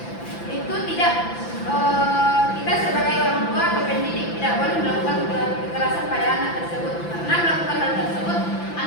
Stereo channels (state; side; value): late; right; 5.9 ms